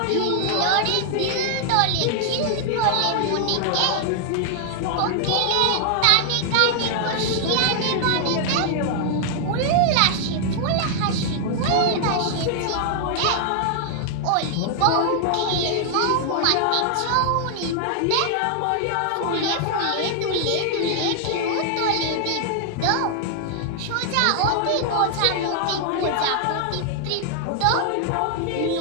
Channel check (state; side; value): different; both; correlation 0.00